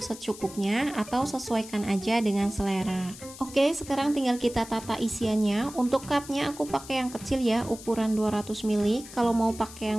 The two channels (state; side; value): noise; left; hiss, 16 dB below the sound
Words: secukupnya atau sesuaikan aja dengan selera. Oke, sekarang tinggal kita tata isiannya. Untuk cupnya aku pakai yang kecil ya, ukuran 200 ml. Kalau mau pakai